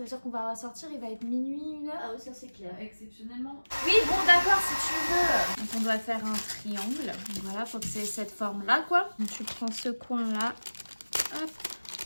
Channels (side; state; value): both; inverted; correlation -1.00